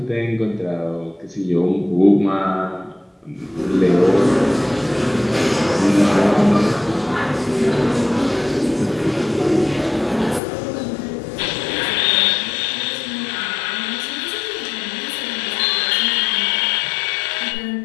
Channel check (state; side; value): drops out; right; at 10.4 s